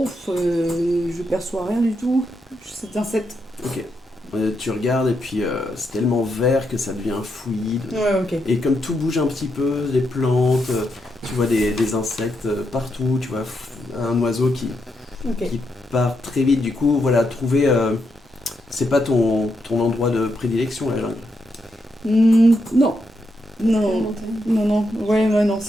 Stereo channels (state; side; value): normal; both; correlation 0.82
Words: je perçois rien du tout. C'est un 7. Ok. Tu regardes et puis c'est tellement vert que ça devient fluide. Ouais, ok. Et comme tout bouge un petit peu, les plantes, tu vois des insectes partout, tu vois un oiseau qui Ok. part très vite. Du coup, voilà, trouver... c'est pas ton endroit de prédilection, la jungle. Non. Non. Non. Ouais, non,